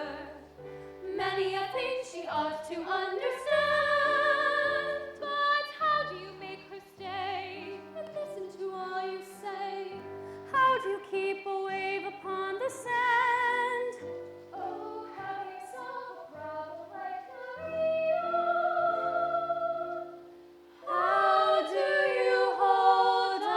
Many a thing she ought to understand. But how do you make her stay? And listen to all you say. How do you keep a wave upon the sand? Oh, how do you solve a problem like Maria? How do you hold a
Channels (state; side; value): identical; both; correlation 1.00